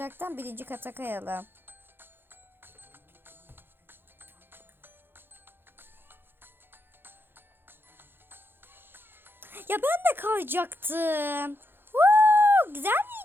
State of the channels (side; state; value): left; late; 0.10 ms